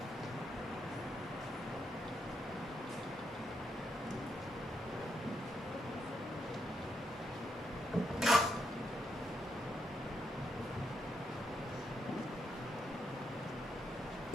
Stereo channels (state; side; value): normal; both; correlation 0.80